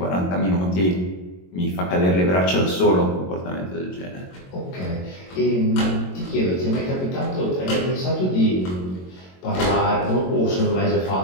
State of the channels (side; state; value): right; late; 22 ms